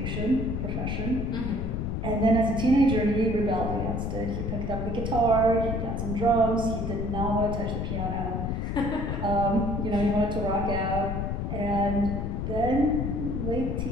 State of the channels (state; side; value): noise; left; rumble, 2 dB below the sound